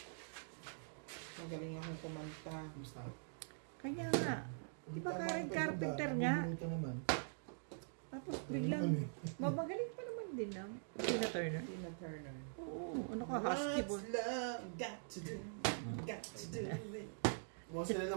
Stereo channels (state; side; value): silent; left; digital silence